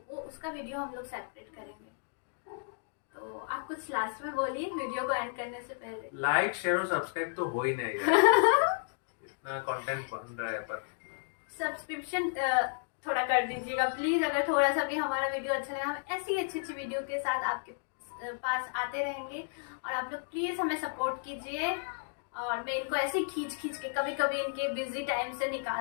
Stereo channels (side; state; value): right; silent; digital silence